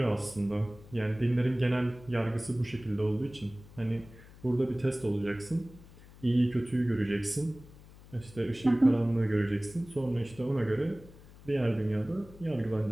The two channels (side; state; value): left; noise; hum, 21 dB below the sound